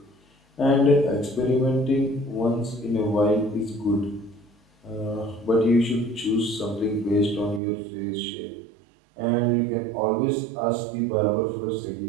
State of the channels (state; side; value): drops out; left; at 7.6 s